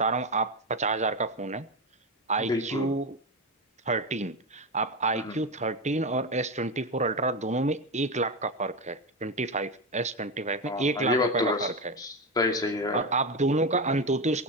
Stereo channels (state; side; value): normal; both; correlation 0.14